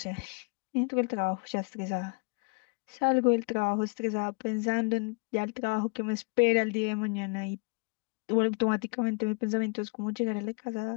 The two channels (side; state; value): right; quieter; 32.3 dB